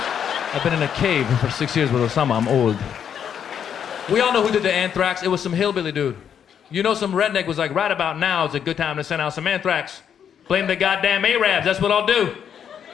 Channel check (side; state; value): right; quieter; 8.4 dB